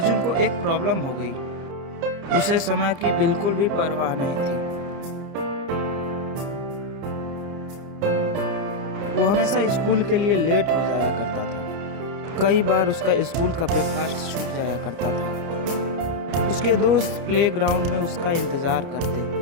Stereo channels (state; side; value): late; left; 30 ms